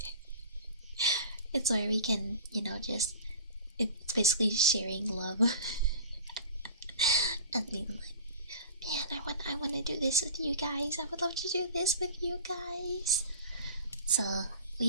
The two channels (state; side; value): inverted; both; correlation -0.39